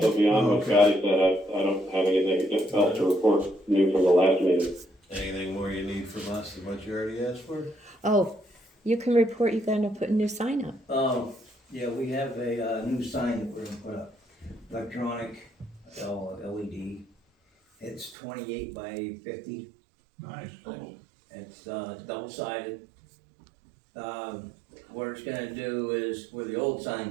Thursday. beyond what Okay. Scotty said, I don't have anything else to report new from the last meeting. Anything more you need from us than what you already asked for? Oh, you can report you're gonna put a new sign up. Yeah, we have a, new sign that we're gonna put up, electronic, LED. It's 28 by 50. Nice. It's double-sided. What it's gonna do is, where the old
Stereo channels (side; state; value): left; drops out; at 18.2 s